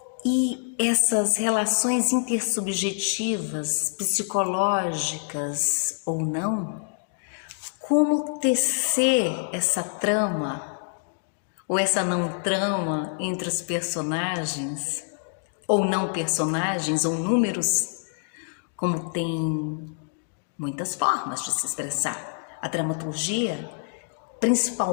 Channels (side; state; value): right; silent; digital silence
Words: E essas relações intersubjetivas, psicológicas ou não, como tecer essa trama ou essa não trama entre os personagens, ou não personagens, ou números, como tem muitas formas de se expressar. A dramaturgia,